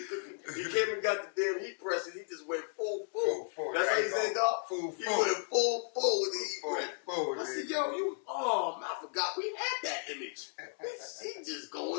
cooking. He came and got the damn heat press and he just went full. That's how he said, dog. Full. He went full with the heat press. Full. I said, yo, man, I forgot we had that image. He just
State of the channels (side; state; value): right; silent; 55 dB below the other